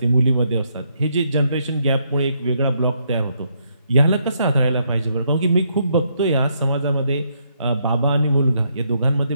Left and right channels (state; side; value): inverted; both; correlation -0.75